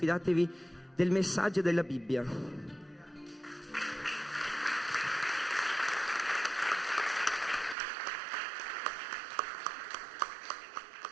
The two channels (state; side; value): drops out; left; at 7.8 s